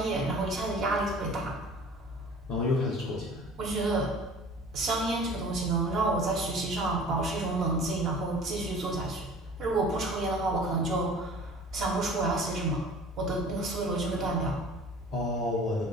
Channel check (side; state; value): both; normal; correlation 0.45